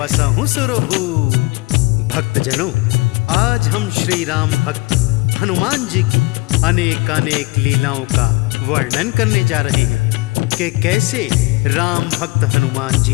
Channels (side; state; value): right; quieter; 24.4 dB